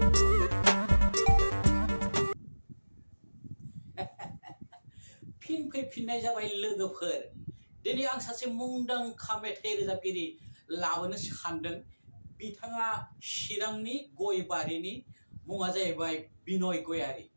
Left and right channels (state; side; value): inverted; both; correlation -1.00